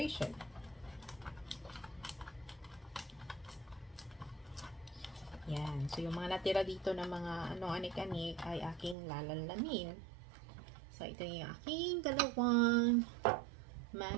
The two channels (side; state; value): left; drops out; at 9.0 s